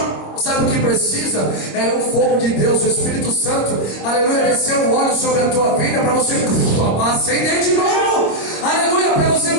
Sabe o que precisa? É o fogo de Deus, o Espírito Santo, aleluia, descer o óleo sobre a tua vida para você acender de novo, aleluia, para você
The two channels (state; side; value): late; right; 25 ms